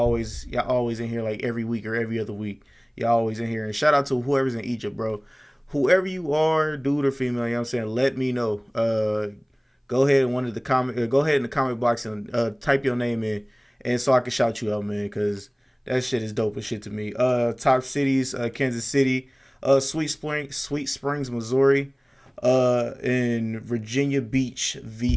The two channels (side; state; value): both; identical; correlation 1.00